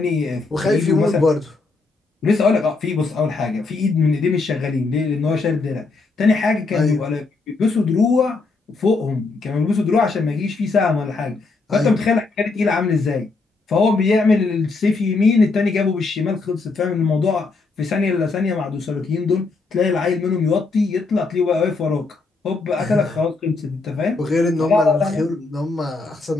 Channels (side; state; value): right; quieter; 3.9 dB